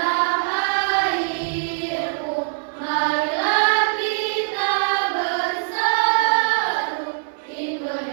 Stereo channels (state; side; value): silent; left; 64 dB below the other